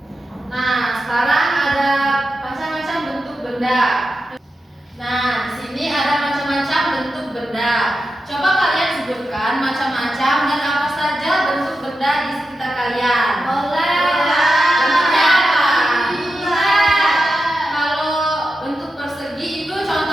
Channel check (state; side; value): normal; both; correlation 0.90